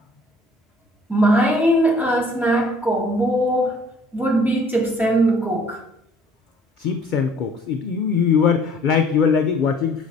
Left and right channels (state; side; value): normal; both; correlation 0.56